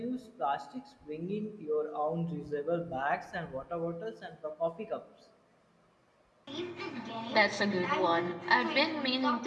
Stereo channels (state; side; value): identical; both; correlation 1.00